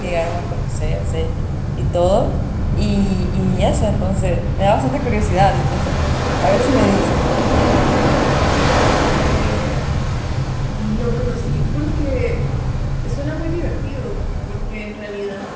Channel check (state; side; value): identical; both; correlation 1.00